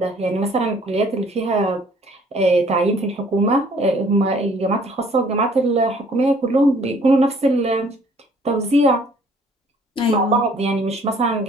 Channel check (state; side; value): normal; both; correlation 0.58